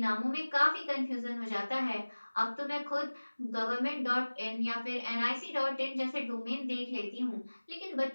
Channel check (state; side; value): inverted; both; correlation -1.00